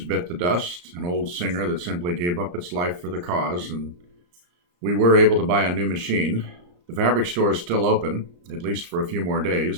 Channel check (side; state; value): left; late; 34 ms